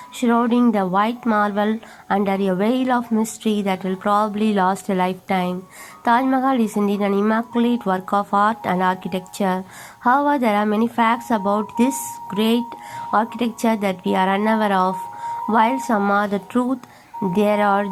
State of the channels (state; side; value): identical; both; correlation 1.00